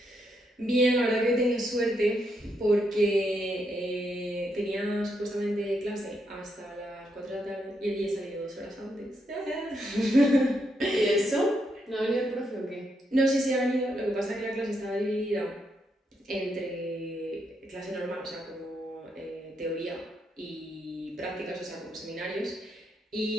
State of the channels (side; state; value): both; normal; correlation 0.79